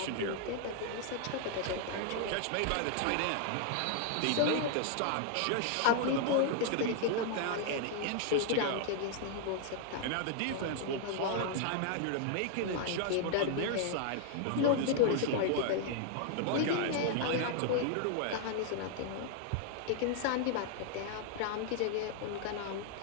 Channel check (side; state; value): both; different; correlation 0.00